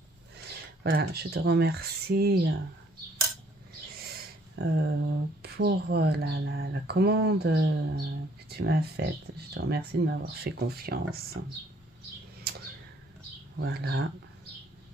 Voilà, je te remercie pour la commande que tu m'as faite. Je te remercie de m'avoir fait confiance. Voilà.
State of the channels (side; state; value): both; normal; correlation 0.63